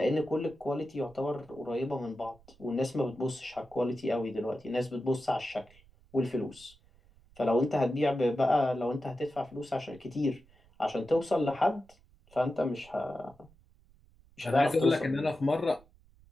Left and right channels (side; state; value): right; noise; rumble, 28 dB below the sound